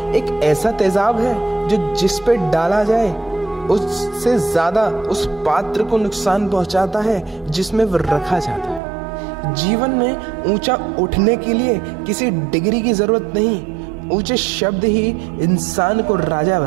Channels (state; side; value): drops out; left; at 8.8 s